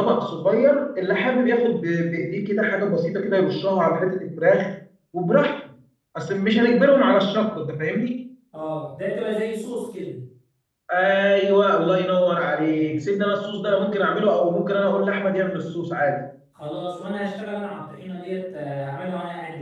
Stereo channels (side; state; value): both; identical; correlation 1.00